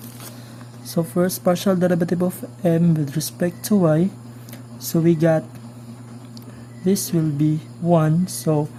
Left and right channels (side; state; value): both; identical; correlation 1.00